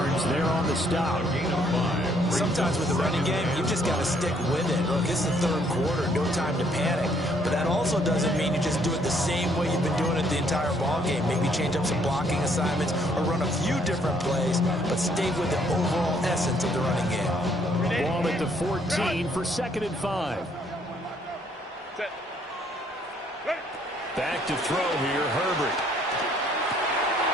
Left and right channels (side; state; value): both; normal; correlation 0.66